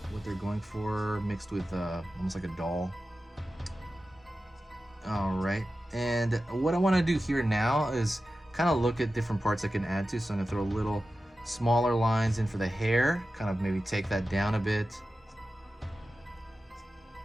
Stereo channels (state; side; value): normal; both; correlation 0.93